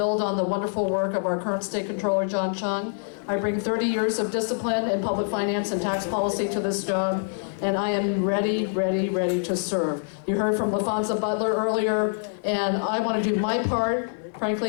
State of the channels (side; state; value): right; silent; digital silence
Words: on the wonderful work of our current state controller, John Chung. I bring 30 years of discipline in public finance and tax policy to this job, and I am ready to serve. You heard from LaFonza Butler earlier, and I want to do my part.